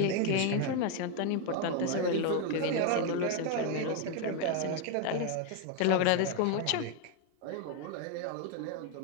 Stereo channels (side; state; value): both; different; correlation 0.01